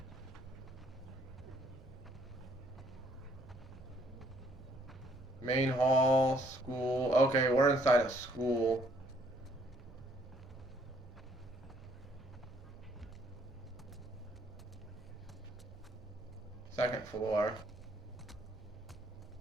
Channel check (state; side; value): normal; both; correlation 0.66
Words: Main hall, school. Okay, we're inside a school. Second floor.